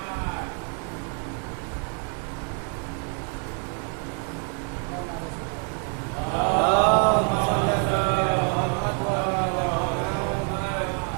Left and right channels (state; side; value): quieter; left; 39.4 dB